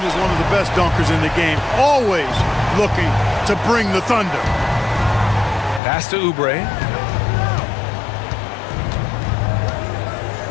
is one of the best dunkers in the game, always looking to bring the thunder. Pass to Oubre.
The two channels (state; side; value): drops out; right; at 5.8 s